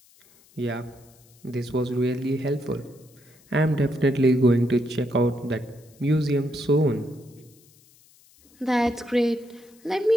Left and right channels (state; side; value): noise; left; hiss, 29 dB below the sound